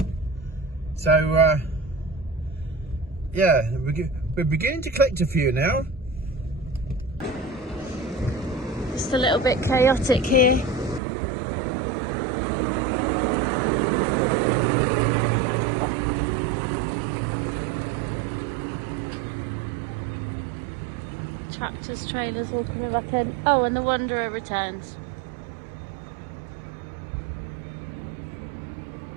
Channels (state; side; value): drops out; left; at 11.0 s